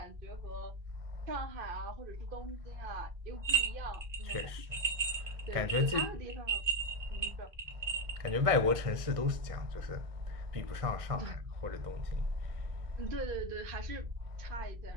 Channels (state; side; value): late; left; 1.6 ms